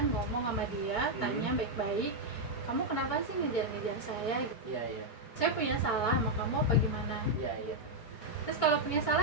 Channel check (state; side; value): late; right; 4.4 ms